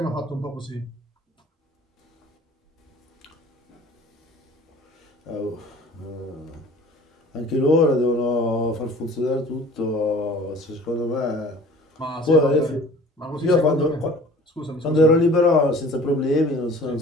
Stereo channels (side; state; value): both; normal; correlation 0.47